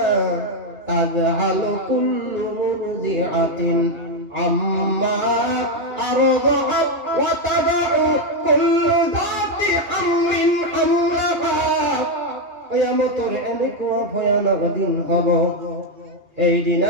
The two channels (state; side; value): late; left; 2.3 ms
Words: তাযহালু কুল্লু মুরদিআতিন আম্মা আরদাআত ওয়া তাদাউ কুল্লু যাতি হামলিন হামলাহা। কিয়ামতের এনেকুৱা ভয়ানক দিন হব। এই